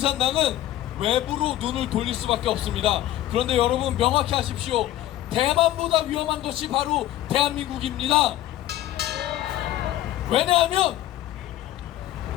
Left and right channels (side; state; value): right; quieter; 13.8 dB